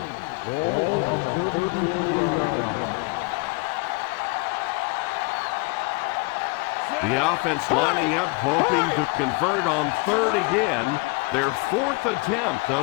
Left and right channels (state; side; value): quieter; right; 27.5 dB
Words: Ball on the 34-yard line. The offense lining up, hoping to convert on third again. Their 4th attempt